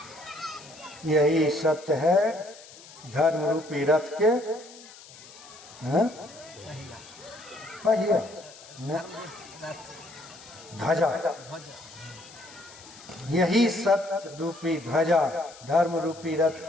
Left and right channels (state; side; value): noise; left; hiss, 19 dB below the sound